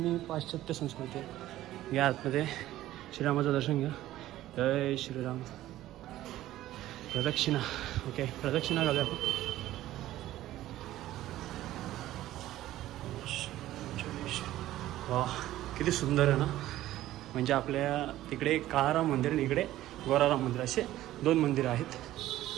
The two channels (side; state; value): left; quieter; 14.6 dB